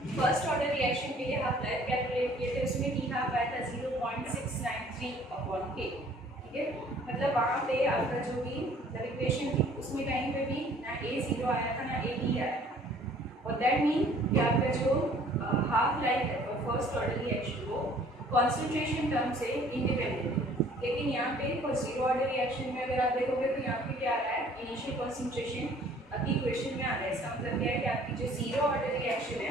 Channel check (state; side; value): normal; both; correlation 0.55